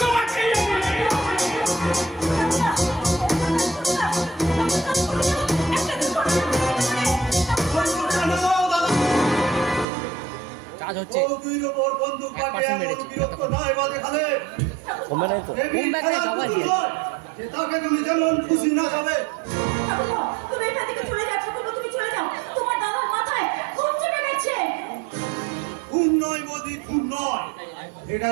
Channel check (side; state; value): left; drops out; at 9.9 s